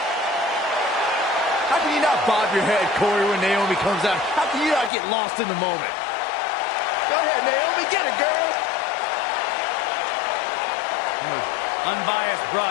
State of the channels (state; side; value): drops out; right; at 4.9 s